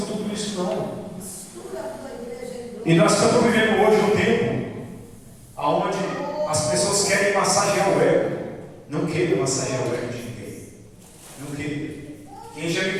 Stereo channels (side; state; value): both; identical; correlation 1.00